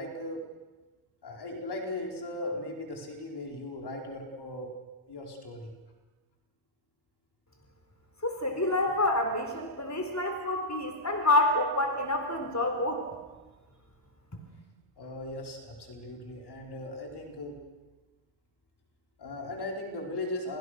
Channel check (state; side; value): normal; both; correlation -0.12